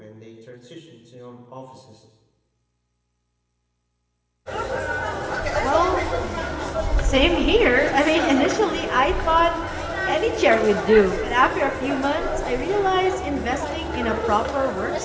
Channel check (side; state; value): both; identical; correlation 1.00